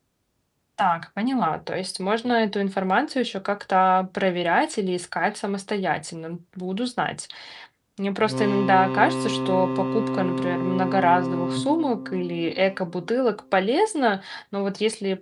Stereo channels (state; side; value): identical; both; correlation 1.00